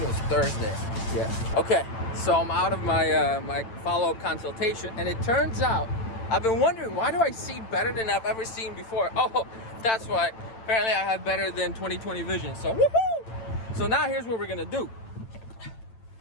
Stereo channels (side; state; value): right; late; 9.0 ms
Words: it was Thursday. Yeah. Okay, so I'm out of my my follow-up consultation, and it turns out I've been wondering, why do I see better than I've ever seen before? Oh, that's why. Apparently I have better than 20/20 vision. So woohoo! So now here's what we're gonna do.